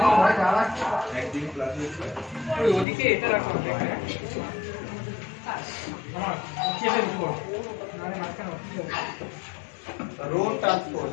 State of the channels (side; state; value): right; drops out; at 2.9 s